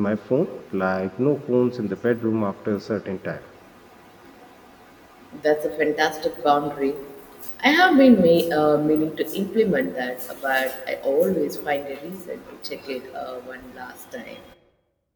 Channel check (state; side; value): identical; both; correlation 1.00